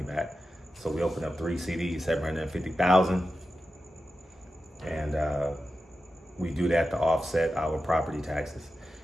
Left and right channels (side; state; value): both; normal; correlation 0.92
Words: back. So we opened up 3 CDs, 750,000, and we do that to offset our property taxes.